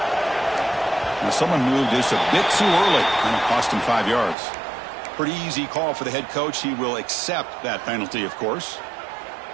Now someone moved this a bit too early, and it cost him 5 yards. Pretty easy call for the head coach. He will accept that penalty, of course.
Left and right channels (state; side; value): drops out; left; at 4.4 s